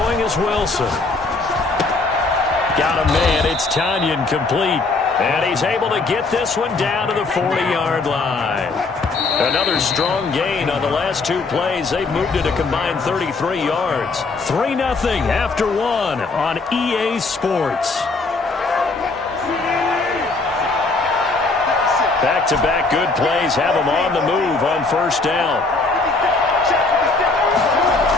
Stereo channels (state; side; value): quieter; right; 3.7 dB